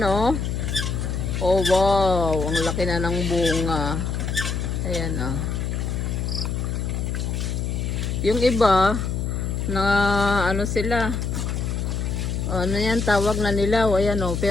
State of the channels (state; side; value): noise; left; hum, 1 dB below the sound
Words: Oh, wow, ang laki na ng bunga. Ayan Yung iba na ano sila, ano yan tawag na nila, ayan